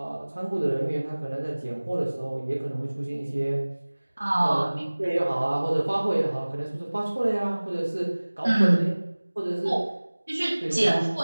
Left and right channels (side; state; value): both; inverted; correlation -1.00